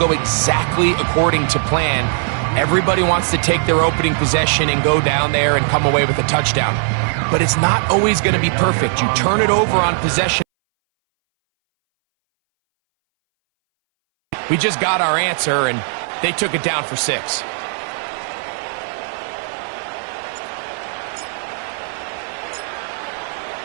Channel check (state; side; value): silent; left; 63 dB below the other